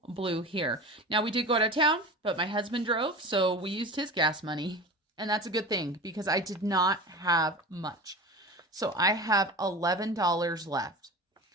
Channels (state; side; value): normal; both; correlation 0.32